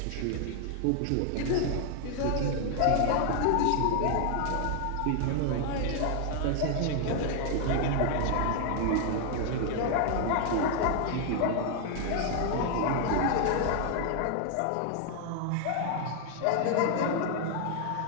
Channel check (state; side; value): different; both; correlation 0.00